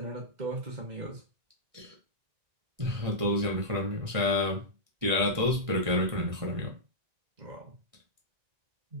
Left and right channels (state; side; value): late; left; 1.6 ms